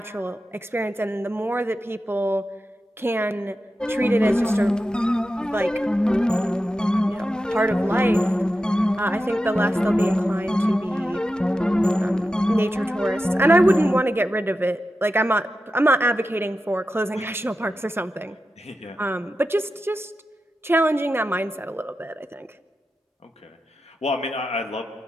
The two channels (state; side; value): normal; both; correlation 0.91